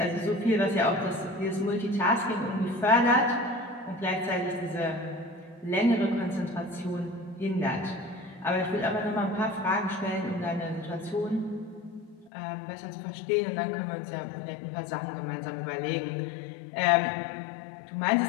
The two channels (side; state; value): right; drops out; at 12.3 s